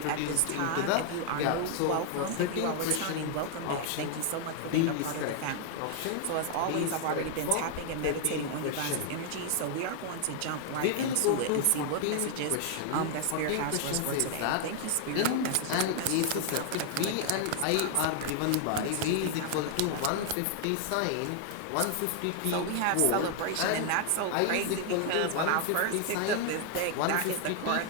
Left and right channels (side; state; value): both; different; correlation 0.00